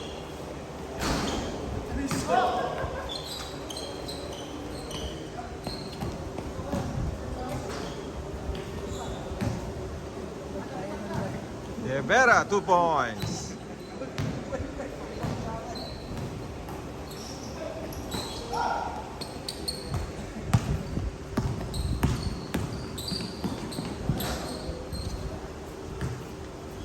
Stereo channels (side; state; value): both; identical; correlation 1.00